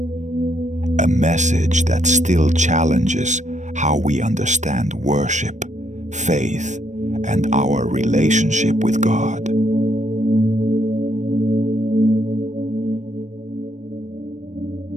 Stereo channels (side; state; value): left; late; 0.35 ms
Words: A message that still challenges how we understand worship, faith, and our relationship with God.